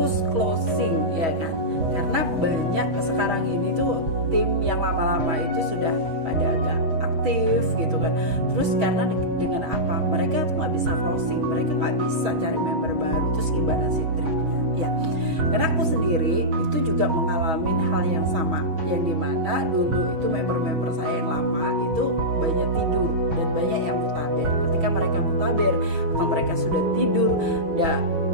closing, ya kan? Karena banyak sekarang ini tuh tim yang lama-lama itu sudah pada agak aktif gitu kan. Terus karena dengan apa? Mereka tuh nggak bisa closing, mereka nggak bisa cari member baru. Terus gimana sih triknya? Ya, karena aku sendiri itu juga mengalami hal yang sama, yang dimana dulu itu member-member saya yang lama itu banyak tidur dan banyak yang mutaber. Ketika mereka mutaber atau mereka sudah tidur dan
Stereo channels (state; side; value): late; left; 6.2 ms